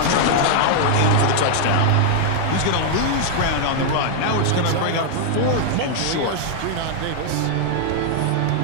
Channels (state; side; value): different; both; correlation 0.00